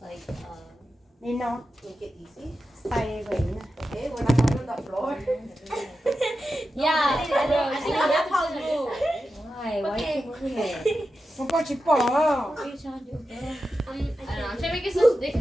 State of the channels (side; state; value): both; normal; correlation 0.91